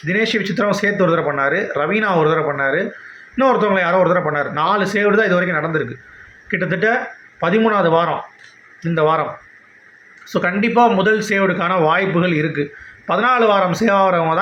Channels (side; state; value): both; identical; correlation 1.00